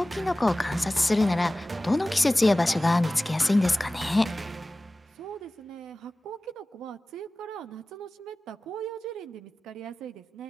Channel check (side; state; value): both; normal; correlation 0.97